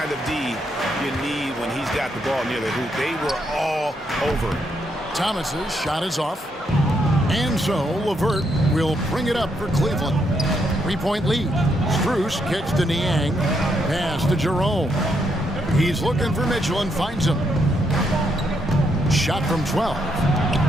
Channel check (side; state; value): both; normal; correlation 0.77